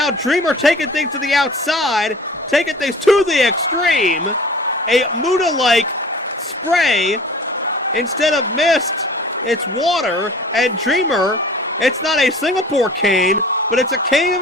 Dreamer taking things to the outside, taking things to the extreme. A Muda-like spray. Instead of mist, it's water. And Dreamer, it's not a Singapore cane, but it's a cane of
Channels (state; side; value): normal; both; correlation 0.44